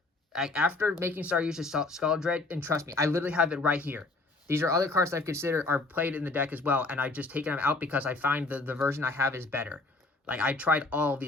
After making Saryuja Skaldred, and trust me, I literally have it right here. These are other cards that I've considered are played in the deck as well, and I've just taken them out because I find the version I have is better. Like, I tried all of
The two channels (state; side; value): quieter; right; 3.3 dB